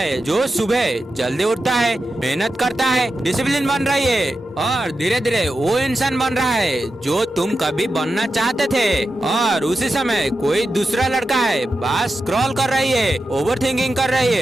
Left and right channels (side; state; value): both; normal; correlation 0.90